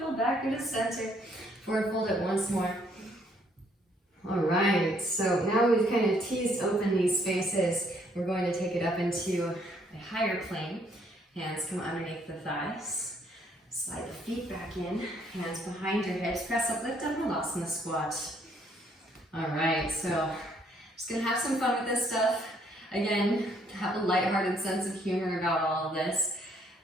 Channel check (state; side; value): normal; both; correlation 0.67